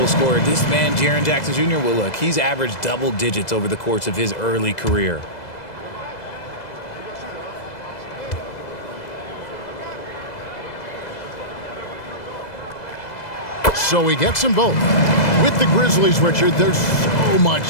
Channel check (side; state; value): right; late; 2.0 ms